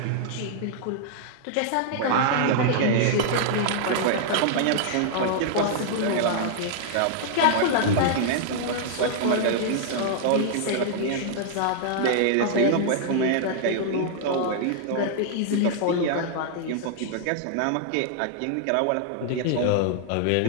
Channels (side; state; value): both; different; correlation -0.01